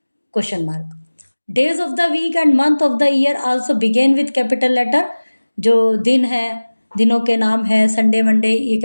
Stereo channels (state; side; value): inverted; both; correlation -1.00